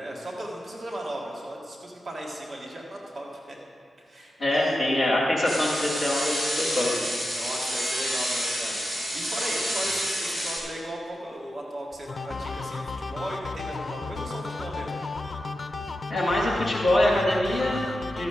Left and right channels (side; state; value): both; normal; correlation 0.90